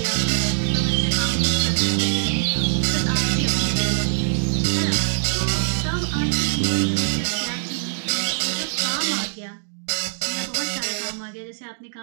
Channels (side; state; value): left; silent; digital silence